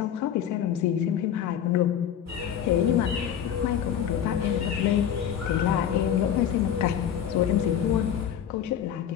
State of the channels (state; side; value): quieter; right; 9.4 dB